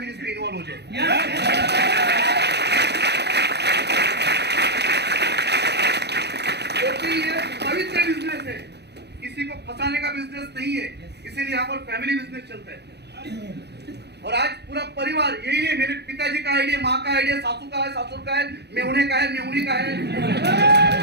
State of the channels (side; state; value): left; late; 0.49 ms